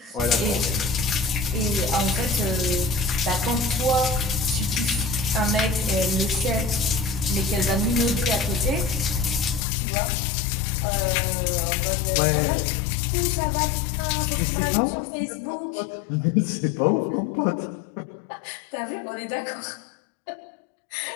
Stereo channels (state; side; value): drops out; right; at 9.7 s